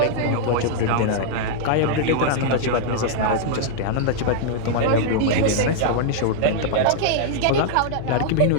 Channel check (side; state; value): both; different; correlation -0.01